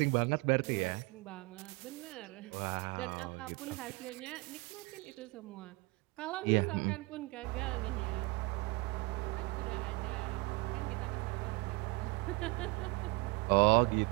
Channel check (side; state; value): left; quieter; 25.1 dB